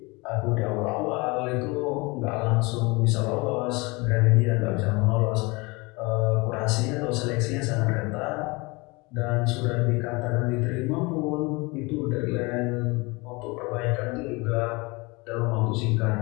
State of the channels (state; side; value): quieter; right; 25.9 dB